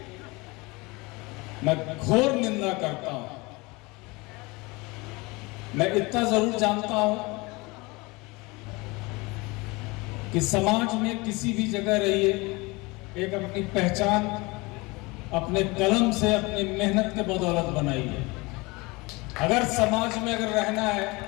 मैं घोर निंदा करता हूं। मैं इतना जरूर जानता हूं कि समाज में किसी भी जगह रहिए, एक अपनी पहचान अपने कलम से, अपनी मेहनत के बदौलत बनाई है। अगर समाज में रहना है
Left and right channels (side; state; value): right; quieter; 24.7 dB